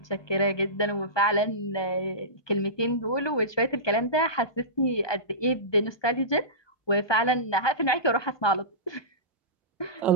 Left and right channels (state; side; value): late; right; 1.2 ms